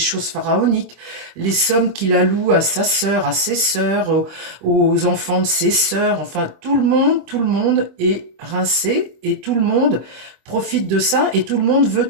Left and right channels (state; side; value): late; left; 25 ms